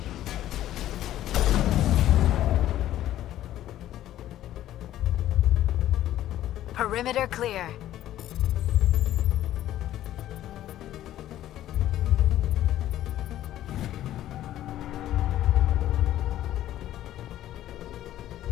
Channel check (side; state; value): right; quieter; 13.0 dB